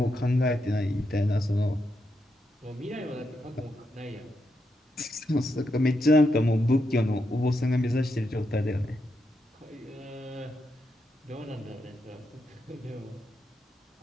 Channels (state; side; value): normal; both; correlation 0.83